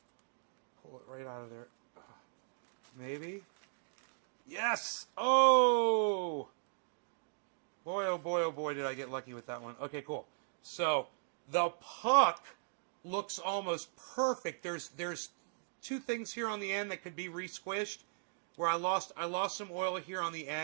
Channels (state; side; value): silent; left; digital silence